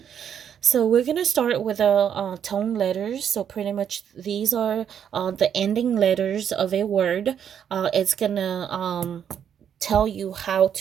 So we're gonna start with tone letters. So pretty much these are the ending letters of a word. It's gonna tell you how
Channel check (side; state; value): left; quieter; 8.6 dB